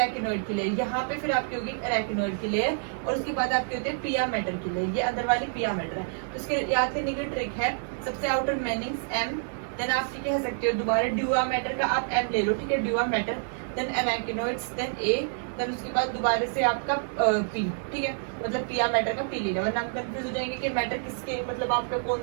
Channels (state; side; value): silent; left; digital silence